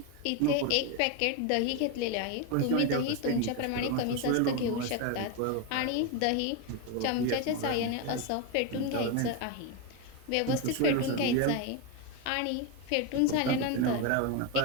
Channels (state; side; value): different; both; correlation 0.03